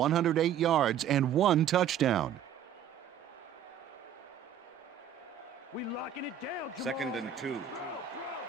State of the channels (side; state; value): left; quieter; 9.0 dB